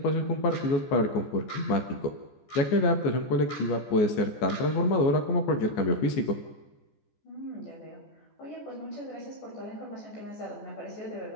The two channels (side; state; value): right; late; 14 ms